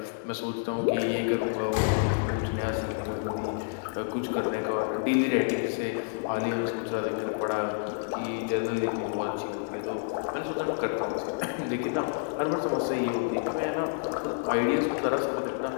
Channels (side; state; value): right; silent; digital silence